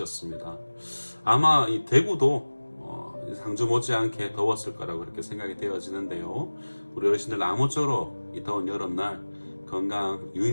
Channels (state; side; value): inverted; both; correlation -1.00